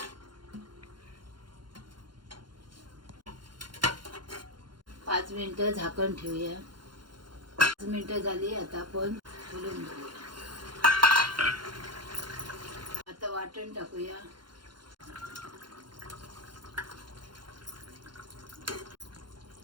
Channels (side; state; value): left; late; 0.72 ms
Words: पाच मिनिटं झाकण ठेवूया. 5 मिनिटं झाली. आता आपण खोलून घेऊया. आता वाटण टाकूया.